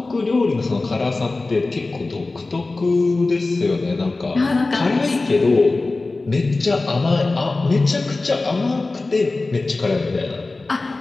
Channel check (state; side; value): quieter; right; 3.4 dB